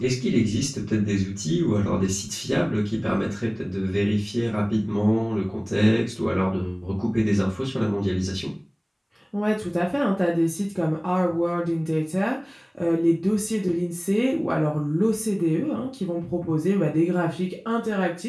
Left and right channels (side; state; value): both; identical; correlation 1.00